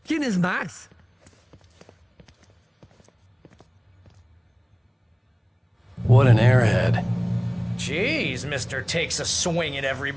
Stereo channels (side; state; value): both; identical; correlation 1.00